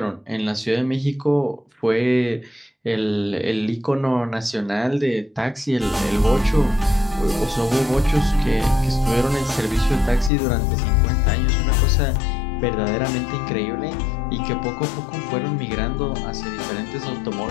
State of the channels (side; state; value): right; drops out; at 10.3 s